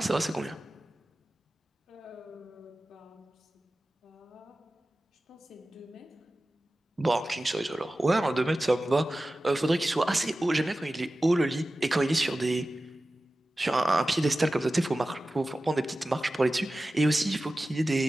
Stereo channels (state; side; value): normal; both; correlation 0.95